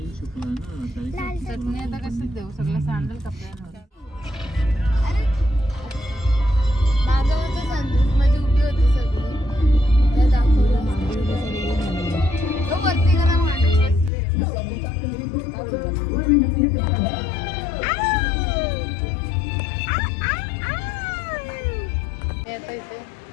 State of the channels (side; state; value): right; drops out; at 14.1 s